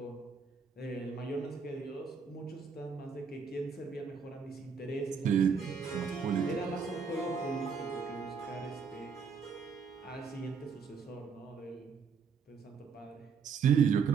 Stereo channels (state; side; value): quieter; left; 5.9 dB